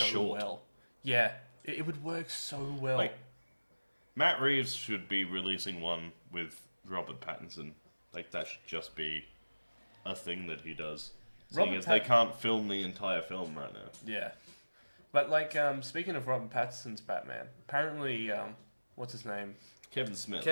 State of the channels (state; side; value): inverted; both; correlation -1.00